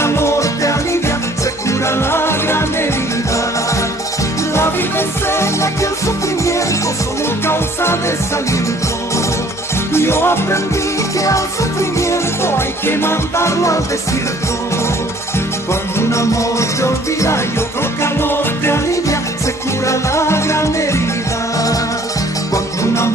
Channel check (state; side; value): normal; both; correlation 0.56